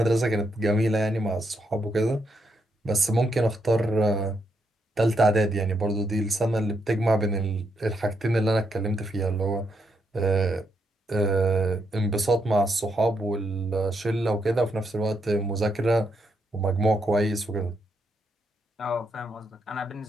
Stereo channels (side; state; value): both; normal; correlation 0.79